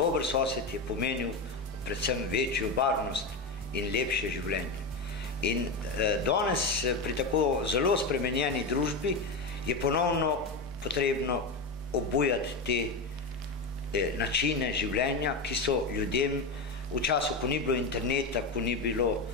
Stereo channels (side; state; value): right; quieter; 3.4 dB